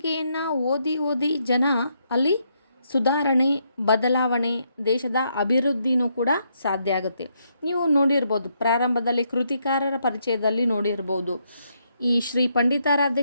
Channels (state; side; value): inverted; both; correlation -0.77